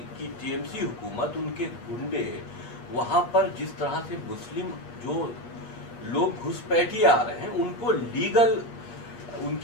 की टीएमसी हुकूमत, उनके गुंडे वहाँ पर जिस तरह से मुस्लिम जो लोग घुसपैठिए आ रहे हैं उनको लीगल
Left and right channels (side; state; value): right; late; 8.4 ms